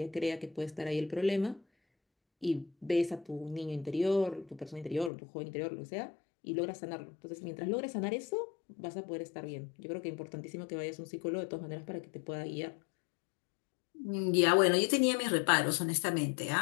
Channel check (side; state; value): right; drops out; at 5.1 s